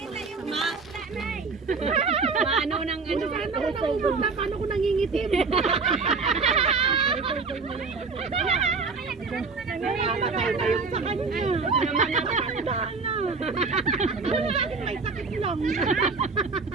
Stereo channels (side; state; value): left; quieter; 4.4 dB